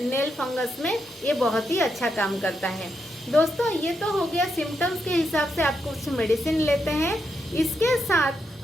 नेल फंगस में ये बहुत ही अच्छा काम करता है। दोस्तों ये तो हो गया सिम्टम्स के हिसाब से आप कुछ मेडिसिन लेते हैं। इसके साथ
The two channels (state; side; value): normal; both; correlation 0.82